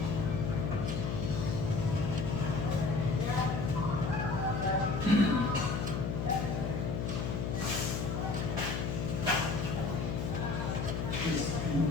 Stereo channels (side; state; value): left; noise; hum, 1 dB below the sound